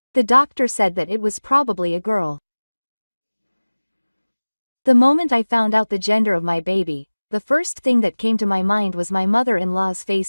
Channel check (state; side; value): inverted; both; correlation -1.00